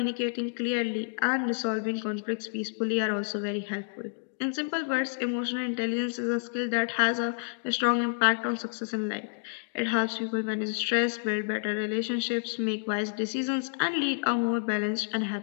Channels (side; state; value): right; silent; digital silence